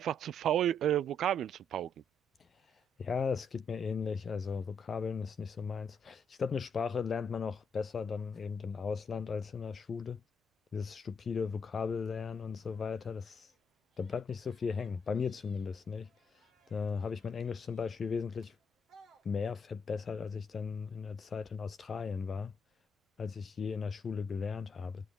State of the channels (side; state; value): both; normal; correlation 0.74